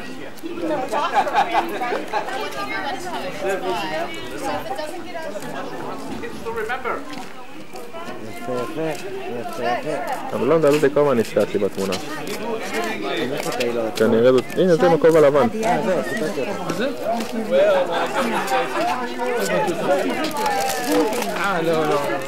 אבל לא מדבר כמה נשתתי בתמונה. כנראה זאת, הנה זה מקוב הלבן. זה? לא, לא.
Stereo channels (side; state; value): both; identical; correlation 1.00